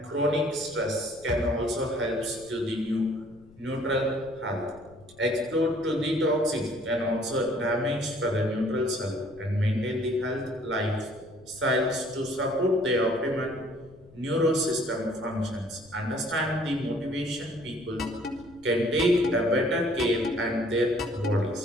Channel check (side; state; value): left; noise; rumble, 24 dB below the sound